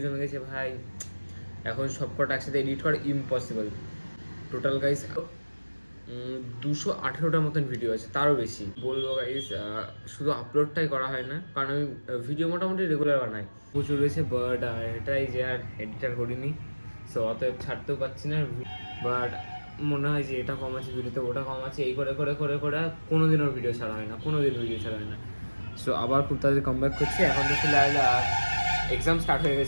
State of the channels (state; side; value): inverted; both; correlation -1.00